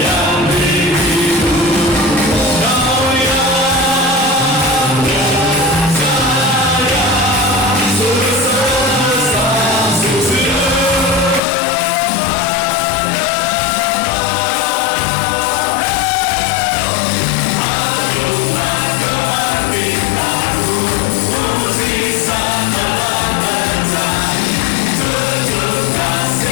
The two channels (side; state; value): right; drops out; at 11.4 s